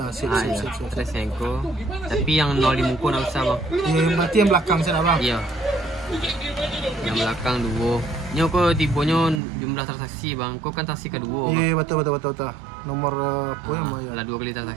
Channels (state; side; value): drops out; left; at 9.4 s